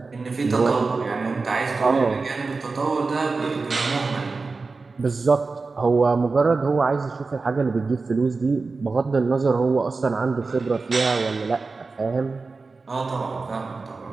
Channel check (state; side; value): quieter; left; 4.0 dB